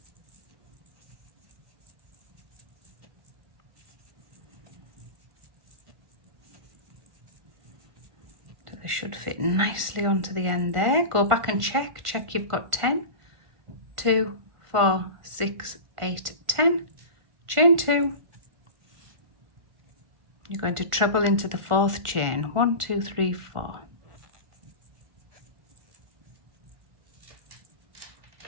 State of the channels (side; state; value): left; late; 1.4 ms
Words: Should fit nicely onto the end there. Go back and check you've got 10. 2, 4, 6, 8, 10. Chain 2. You're going to treble into the 4th chain. 1, 2, 3, 4.